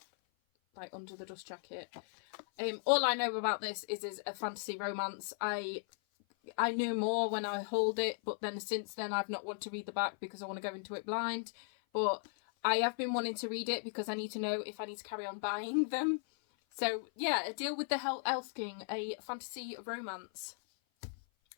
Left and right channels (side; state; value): right; silent; 53 dB below the other